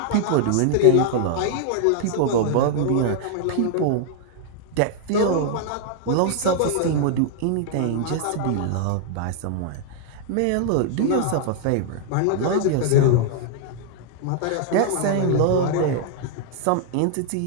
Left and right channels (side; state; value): both; different; correlation 0.00